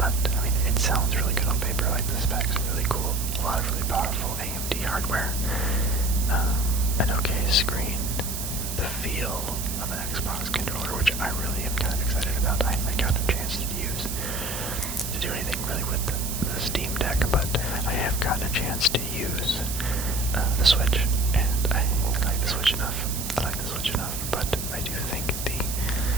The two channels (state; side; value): noise; right; hiss, 6 dB below the sound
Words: I mean, it sounds really good on paper. Like the specs are really cool. A lot of really powerful AMD hardware. An okay screen. The feel of an Xbox controller, which I really am kind of excited about. I haven't got a chance to do anything really with the Steam Deck, but I have gotten a chance to use the Switch, and I like the Switch enough. I like the Switch